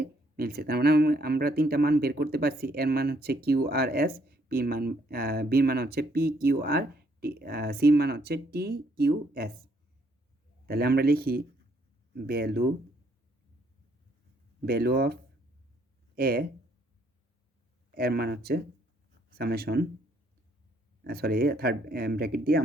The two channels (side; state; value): both; normal; correlation 0.69